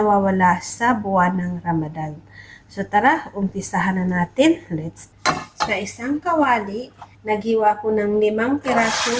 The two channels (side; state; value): both; identical; correlation 1.00